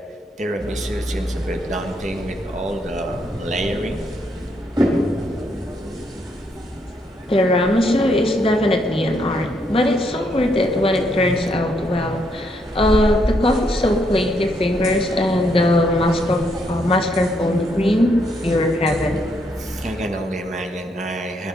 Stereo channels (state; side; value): normal; both; correlation 0.75